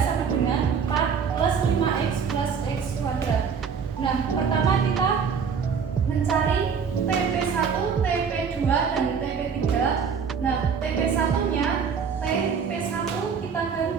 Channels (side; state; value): left; quieter; 6.4 dB